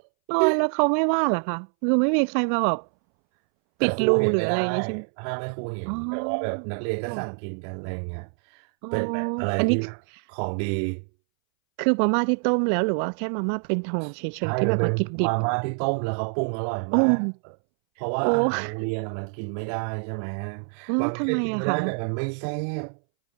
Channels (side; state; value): left; silent; 62 dB below the other